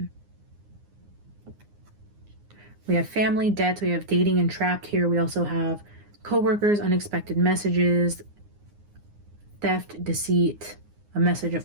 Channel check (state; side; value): late; left; 9.7 ms